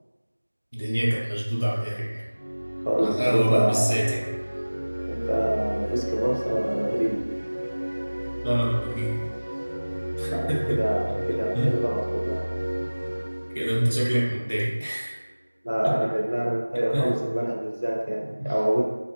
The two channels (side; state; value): both; inverted; correlation -1.00